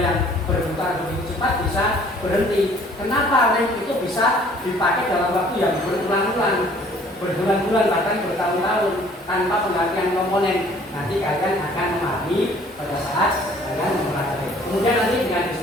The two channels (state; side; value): normal; both; correlation 0.56